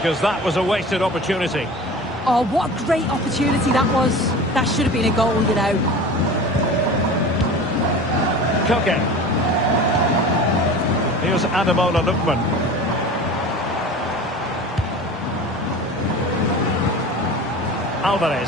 that was a wasted opportunity. Oh, what a great opportunity that was. That should have been a goal, you know. Koke. Here's Ademola Lookman.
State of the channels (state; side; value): normal; both; correlation 0.36